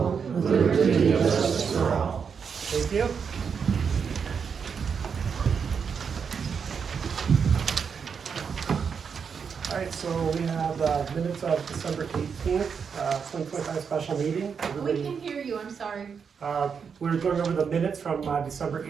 with liberty and justice for all. Thank you. All right, so we have minutes of December 18th, 2025 special meeting. We can hear you, I'm sorry. We're going over the minutes from December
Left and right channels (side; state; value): left; quieter; 6.4 dB